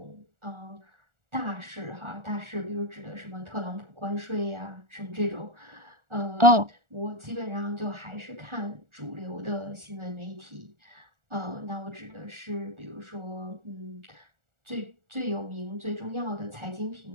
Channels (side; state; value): left; late; 1.4 ms